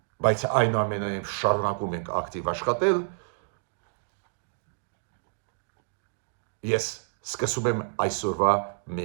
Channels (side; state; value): left; silent; digital silence